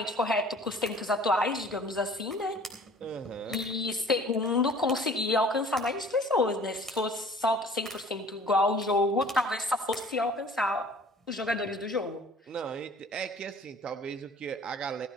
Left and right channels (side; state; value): both; normal; correlation 0.49